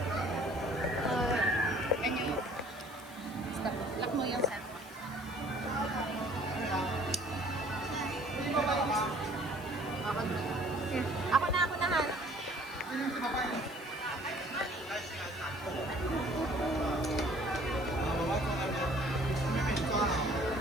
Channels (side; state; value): left; noise; hiss, 20 dB below the sound